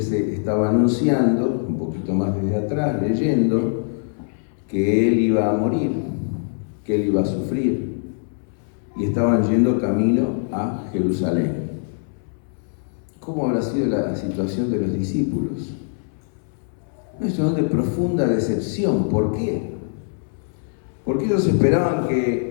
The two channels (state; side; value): silent; right; 63 dB below the other